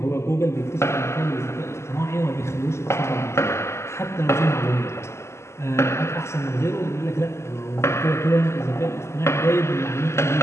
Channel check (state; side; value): late; right; 0.13 ms